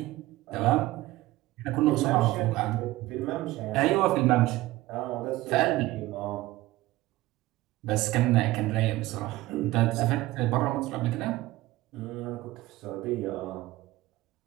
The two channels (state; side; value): quieter; left; 17.7 dB